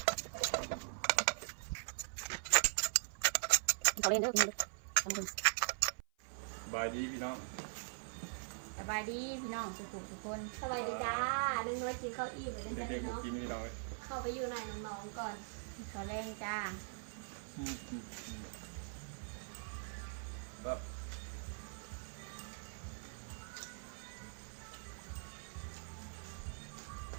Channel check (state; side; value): silent; left; 50 dB below the other